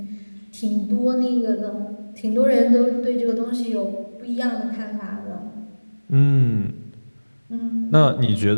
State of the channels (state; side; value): inverted; both; correlation -1.00